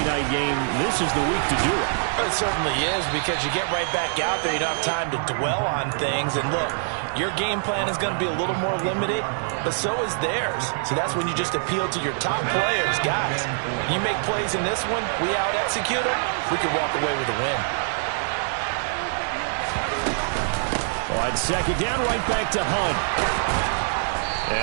night game, this is the week to do it. It certainly is, because you get right back out there. You don't have time to dwell on things. And look, your game plan is going to be a little more limited, but so is theirs. So that's when you just appeal to your top players. Guys, you make plays in this one, we out-execute them, we can walk away with a win. On second down, right back to Hunt.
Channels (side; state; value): left; silent; digital silence